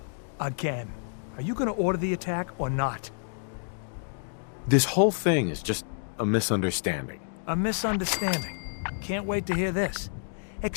Again. Are you gonna order the attack or not? This whole thing is just a misunderstanding. A misunderstanding. Can't wait to hear this.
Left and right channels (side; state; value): right; silent; digital silence